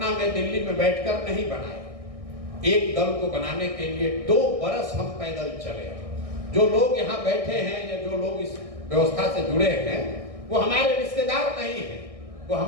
में, दिल्ली में बैठकर नहीं बनाए। एक दल को बनाने के लिए 2 बरस हम पैदल चले। जो लोग यहाँ बैठे हैं या जो लोग इस व्यवस्था से जुड़े हैं वो हमारे रिश्तेदार नहीं है, वो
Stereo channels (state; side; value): late; left; 1.6 ms